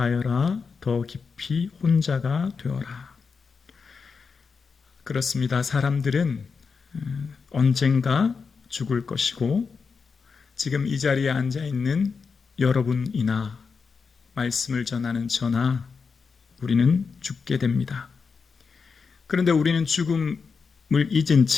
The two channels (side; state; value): right; quieter; 5.3 dB